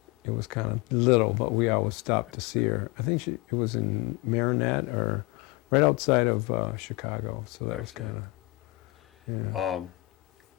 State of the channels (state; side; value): quieter; right; 22.7 dB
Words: kind of little, but we always stopped to see her. I think it was in Marinette, or right outside of Chicago, so that was Okay. kind of, yeah.